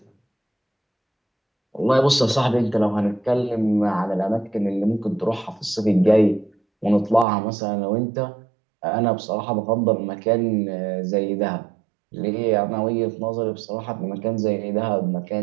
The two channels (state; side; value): drops out; left; at 7.2 s